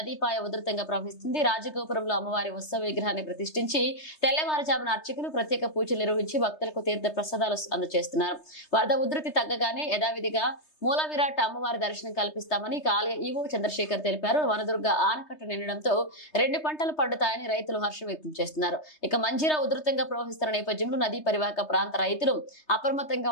ఉధృతంగా ప్రవహిస్తుంది. రాజగోపురంలో అమ్మవారి ఉత్సవ విగ్రహాన్ని ప్రతిష్ఠించి తెల్లవారుజామున అర్చకులు ప్రత్యేక పూజలు నిర్వహించి భక్తులకు తీర్థ ప్రసాదాలు అందజేస్తున్నారు. వరద ఉధృతి తగ్గగానే యథావిధిగా మూల విరాట్ అమ్మవారి దర్శనం కల్పిస్తామని ఆలయ ఈవో చంద్రశేఖర్ తెలిపారు. వనదుర్గ ఆనకట్ట నిండడంతో 2 పంటలు పండుతాయని రైతులు హర్షం వ్యక్తం చేస్తున్నారు. ఇక మంజీరా ఉధృతంగా ప్రవహిస్తున్న నేపథ్యంలో నదీ పరివాహక ప్రాంత రైతులు అప్రమత్తంగా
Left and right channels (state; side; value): late; right; 3.3 ms